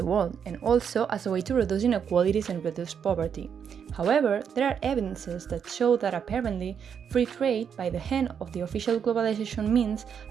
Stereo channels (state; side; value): quieter; left; 7.5 dB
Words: world, and also as a way to reduce inequalities and reduce poverty. However, there are evidences that show that apparently free trade by the hand of the official globalization means